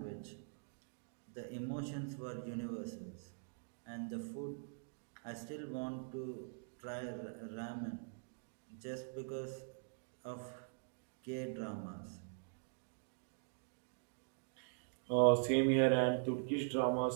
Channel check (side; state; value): left; silent; digital silence